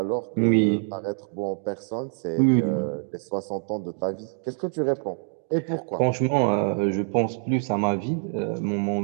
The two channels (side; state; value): left; silent; 61 dB below the other